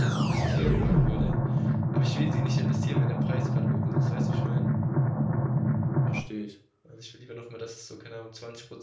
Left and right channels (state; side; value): identical; both; correlation 1.00